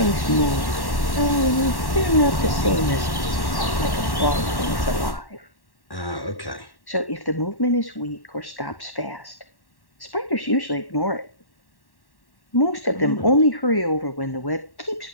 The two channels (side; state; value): right; late; 1.1 ms